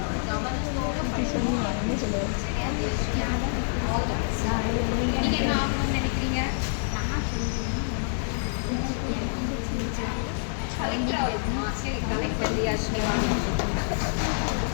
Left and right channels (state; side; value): silent; right; digital silence